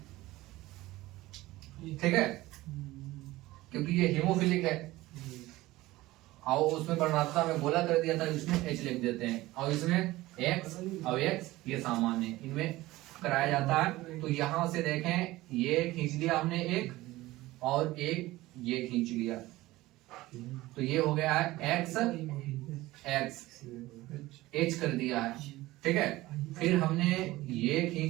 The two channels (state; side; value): quieter; left; 18.1 dB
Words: ठीक है, क्योंकि ये हीमोफिलिक है और उसमें वर्णात्मकता में गोला कर दिया था, इसमें H लिख देते हैं, और इसमें X और X ये सामान्य इनमें कराया जाता है। तो यहाँ से देखें, ये खींच लिया हमने एक और एक ये खींच लिया, तो ये हो गया है X H कर दिया है। ठीक है, फिर हमने ये